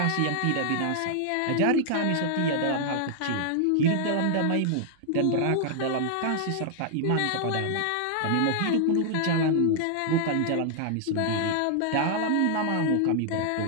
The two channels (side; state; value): both; different; correlation 0.00